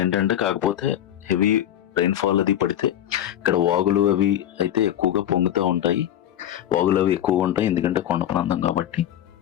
ఏంటంటే కాకపోతే హెవీ రైన్ఫాల్ అది పడితే ఇక్కడ వాగులు అవి అయితే ఎక్కువగా పొంగుతూ ఉంటాయి. వాగులు అవి ఎక్కువగా ఉంటాయి ఎందుకంటే కొండ ప్రాంతం కాబట్టి.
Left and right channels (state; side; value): quieter; right; 11.4 dB